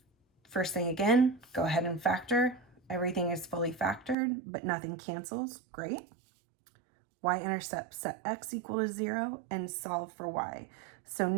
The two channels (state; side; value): drops out; left; at 4.2 s